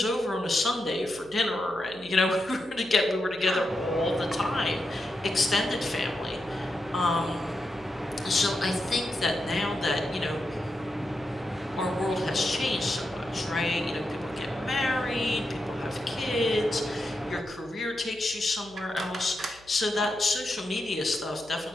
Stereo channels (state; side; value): noise; left; hum, 26 dB below the sound